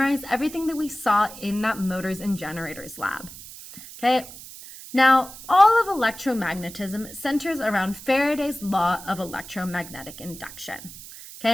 everything that we saw in that motors and generators lab. Okay, now all of electromagnetism centers around Faraday's law of electromagnetic induction.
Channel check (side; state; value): right; noise; hiss, 15 dB below the sound